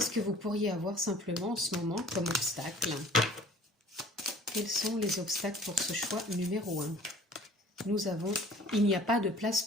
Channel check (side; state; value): both; normal; correlation 0.50